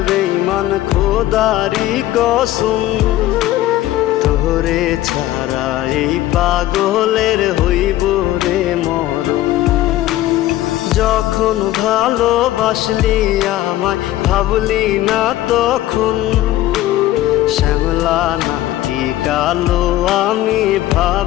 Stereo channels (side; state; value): right; quieter; 14.7 dB